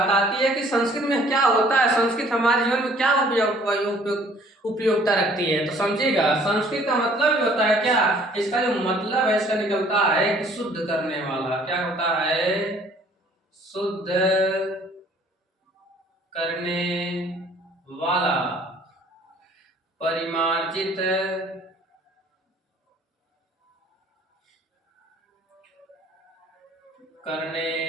आती है कि संस्कृत में क्या होता है, संस्कृत हमारे जीवन में क्या उपयोगिता रखती है। तो समझिएगा, संस्कृत का मतलब भी होता है क्या, इसका जो मतलब है इसका निकलता है कि शुद्ध करने वाला। क्या होता है? शुद्ध करने वाला, परिमार्जित करने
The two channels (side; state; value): both; normal; correlation 0.57